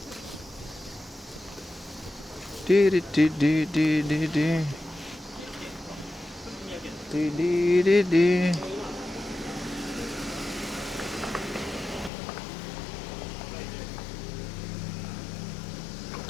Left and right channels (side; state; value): right; drops out; at 12.1 s